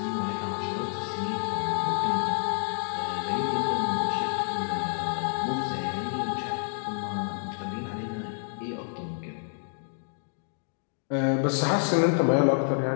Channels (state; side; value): silent; right; 59 dB below the other